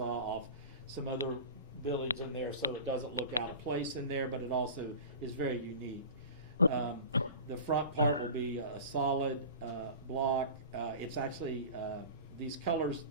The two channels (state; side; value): inverted; both; correlation -0.35